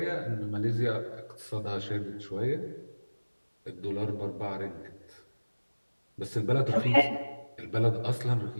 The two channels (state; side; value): inverted; both; correlation -1.00